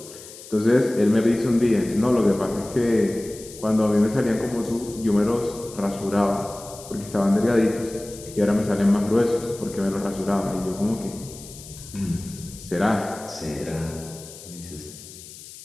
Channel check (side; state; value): left; noise; hiss, 16 dB below the sound